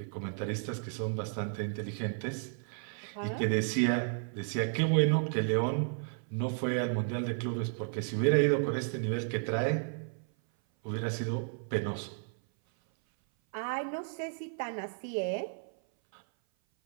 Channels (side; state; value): left; silent; 56 dB below the other